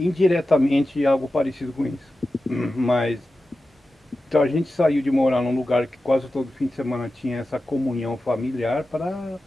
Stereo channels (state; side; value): normal; both; correlation 0.93